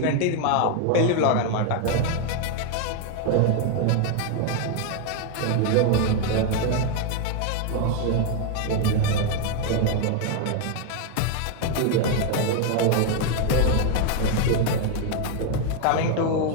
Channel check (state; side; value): different; both; correlation 0.01